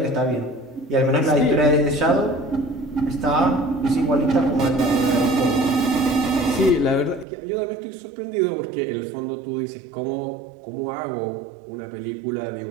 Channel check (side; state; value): left; drops out; at 7.2 s